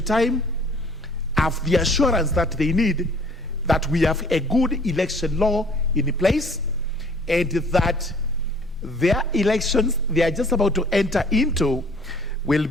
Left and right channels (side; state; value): both; normal; correlation 0.55